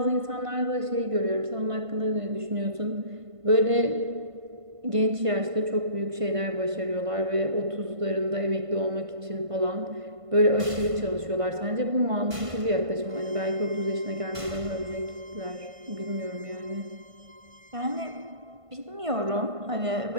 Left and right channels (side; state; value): left; late; 1.5 ms